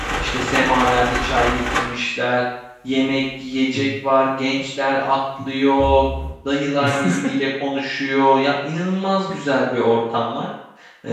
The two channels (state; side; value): identical; both; correlation 1.00